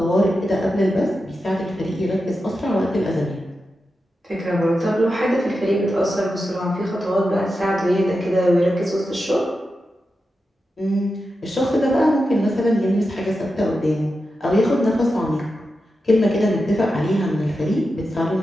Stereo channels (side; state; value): both; normal; correlation 0.90